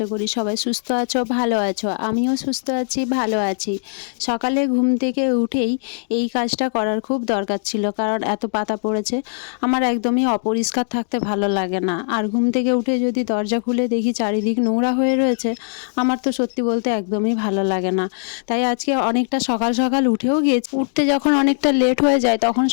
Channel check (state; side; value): silent; right; 66 dB below the other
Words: করি সবাই সুস্থ আছো, ভালো আছো। আমিও সুস্থ আছি, ভালো আছি। সকালে ঘুম থেকে উঠেই এই কাজটা করার খুব দরকার ছিল, কারণ এত পাতা পড়েছে। আমার একদমই অপরিষ্কার থাকতে ভালো লাগে না, আর ঘুম থেকে উঠে যদি দরজা খুলে দেখি চারিদিক নোংরা হয়ে রয়েছে, আমার তো সত্যি বলতে একদমই ভালো লাগে না। তাই আজকে অনেকটা সকাল সকাল উঠেও গিয়েছি। উঠতে যখন অনেকটা লেট হয়ে যায় তখন